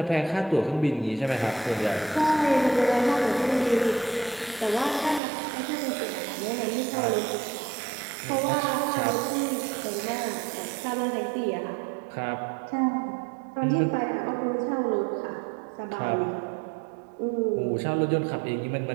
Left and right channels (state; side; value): drops out; left; at 5.2 s